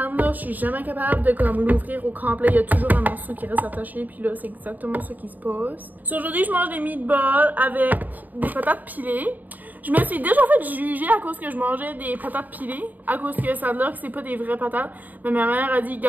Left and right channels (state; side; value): late; left; 0.084 ms